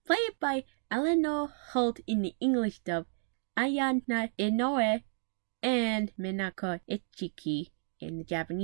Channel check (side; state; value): left; silent; digital silence